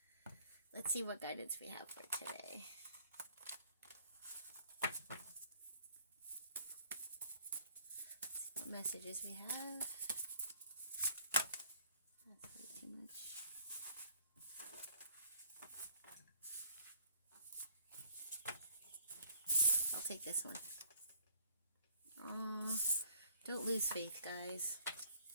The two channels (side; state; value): both; inverted; correlation -0.59